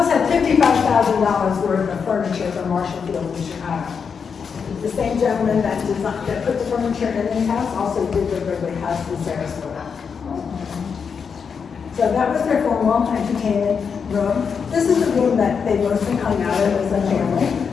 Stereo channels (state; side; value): quieter; right; 6.2 dB